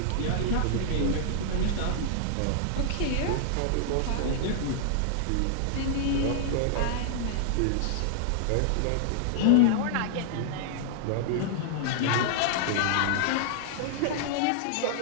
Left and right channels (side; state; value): both; different; correlation -0.01